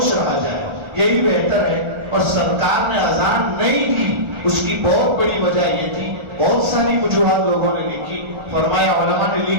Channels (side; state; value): left; late; 1.3 ms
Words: رہا جائے، یہی بہتر ہے. اور سرکار نے اذان نہیں کی، اس کی بہت بڑی وجہ یہ تھی، بہت ساری وجوہات لوگوں نے لکھی، فرمایا علماء نے